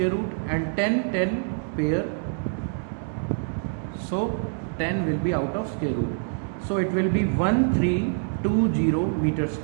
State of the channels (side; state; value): left; silent; digital silence